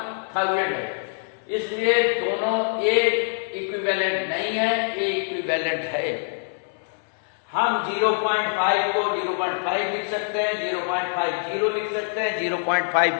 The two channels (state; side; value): silent; right; 62 dB below the other